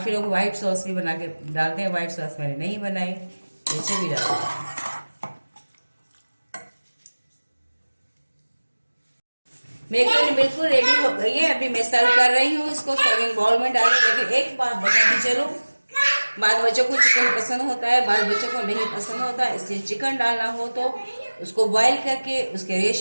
लोग व्हाइट सॉस भी बना के डालते हैं, व्हाइट सॉस मैंने नहीं बनाई, ऐसे भी डालते हैं। मेरी कढ़ी बिल्कुल रेडी हो गई है। अभी मैं सर्व कर रही हूँ इसको सर्विंग बाउल में डालूं। लेकिन एक बात बताती चलूं, बाद बच्चों को चिकन पसंद होता है, बाद बच्चों को नहीं पसंद होता, इसलिए चिकन डालना हो तो उसको बॉईल करके उसके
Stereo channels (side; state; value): both; inverted; correlation -1.00